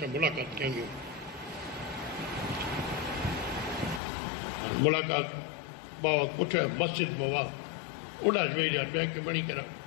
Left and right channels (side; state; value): right; drops out; at 4.0 s